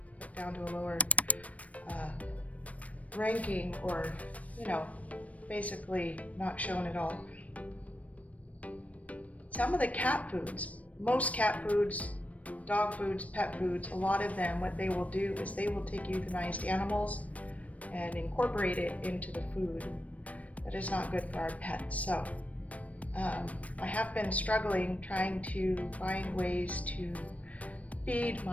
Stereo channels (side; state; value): right; late; 0.067 ms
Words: put down to a lower ranking, or basically not shown at all. Some of the cat foods, most cat foods, dog foods, pet foods, a lot of them, what they will do is they will take euthanized animals and incorporate it into the food. That is not good for our pets. So I have been struggling trying to find ways to feed